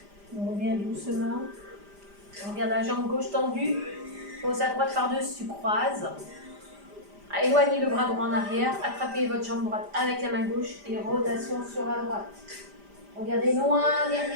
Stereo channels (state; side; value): late; left; 5.0 ms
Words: doucement. On regarde la jambe gauche tendue. Pose à droite par-dessus, croise. Éloignez le bras droit en arrière. Attrapez votre jambe droite avec la main gauche et rotation sur la droite. Regardez loin